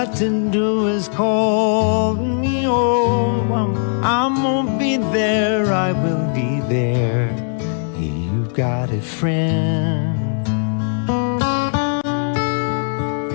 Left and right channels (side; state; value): right; silent; 67 dB below the other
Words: to do is call me. Oh, I'm gonna be there, I will be there. You got a friend,